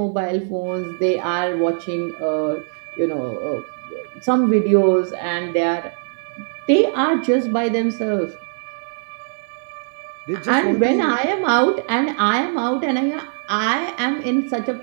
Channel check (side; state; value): left; silent; 61 dB below the other